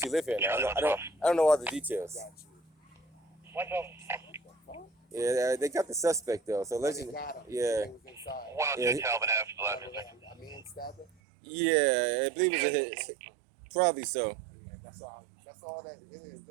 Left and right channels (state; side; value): drops out; left; at 11.1 s